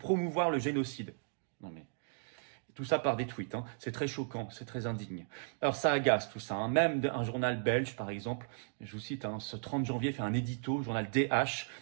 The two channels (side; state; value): left; silent; digital silence